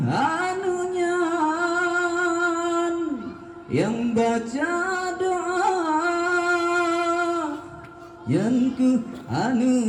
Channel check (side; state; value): both; identical; correlation 1.00